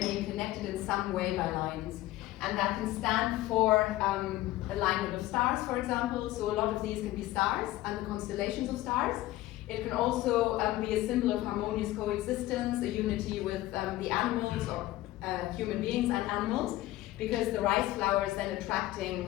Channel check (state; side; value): quieter; right; 16.4 dB